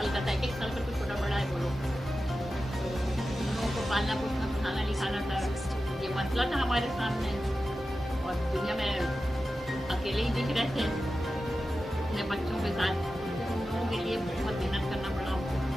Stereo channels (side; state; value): both; normal; correlation 0.93